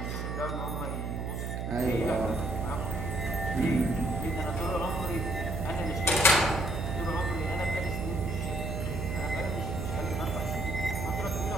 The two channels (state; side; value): noise; right; hum, 3 dB below the sound